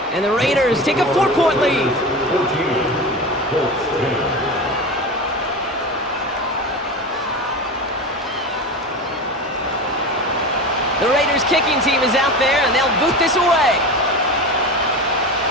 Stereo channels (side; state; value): both; normal; correlation 0.26